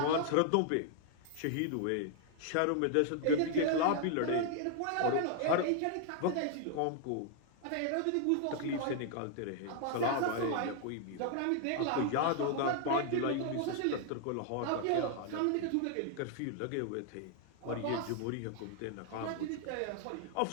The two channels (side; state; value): both; different; correlation 0.00